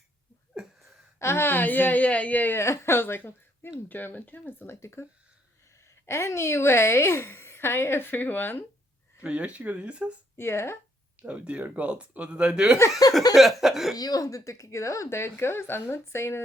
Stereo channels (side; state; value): both; normal; correlation 0.71